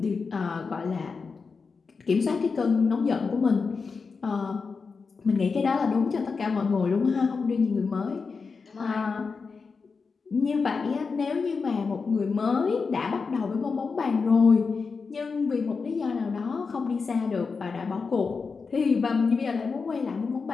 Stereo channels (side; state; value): right; quieter; 4.9 dB